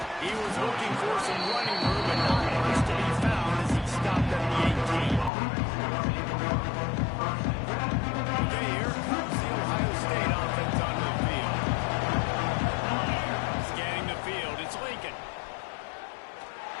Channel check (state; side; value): drops out; right; at 5.3 s